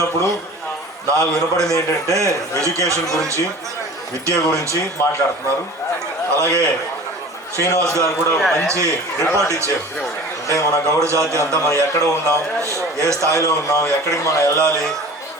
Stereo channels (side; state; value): both; normal; correlation 0.40